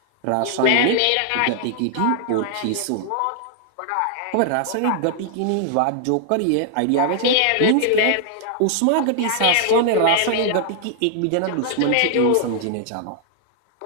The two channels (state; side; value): different; both; correlation 0.00